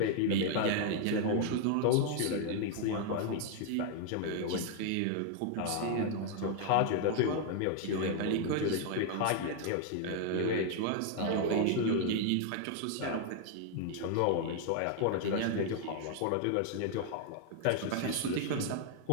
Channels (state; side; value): different; both; correlation 0.00